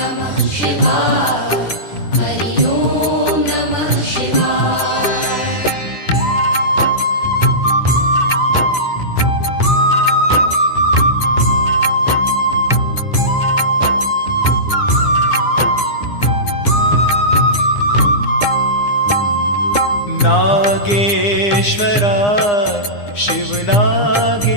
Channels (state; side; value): late; right; 9.8 ms